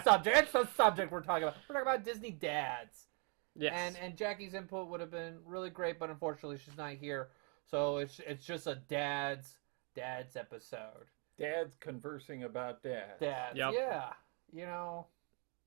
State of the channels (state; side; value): quieter; left; 36.7 dB